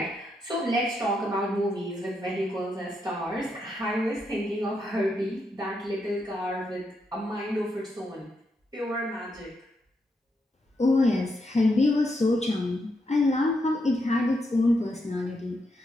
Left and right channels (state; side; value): normal; both; correlation 0.81